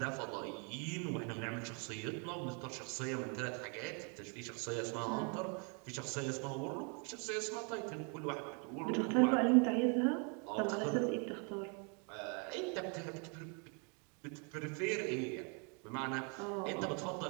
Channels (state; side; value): quieter; left; 36.3 dB